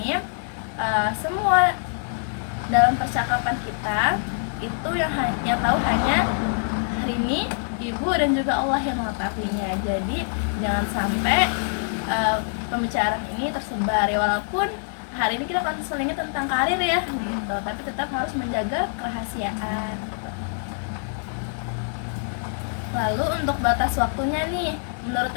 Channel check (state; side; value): silent; right; 62 dB below the other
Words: semua dalam percakapan kita itu yang hanya tahu hanya Rini, ibu, dan juga Allah yang mengetahuinya. Jadi jangan sampai pembicaraan ini tersebar ya, walaupun hari ini kita konselingnya tentang karir ya gitu, tapi tetap harus menjaga kerahasiaan gitu. Lalu untuk batas waktunya nih, menurut